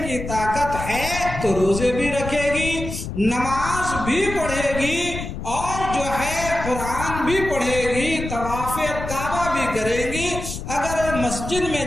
کی طاقت ہے تو روزے بھی رکھے گی، نماز بھی پڑھے گی اور جو ہے قرآن بھی پڑھے گی، طواف کعبہ بھی کرے گی۔ اگر مسجد میں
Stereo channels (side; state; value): left; noise; rumble, 7 dB below the sound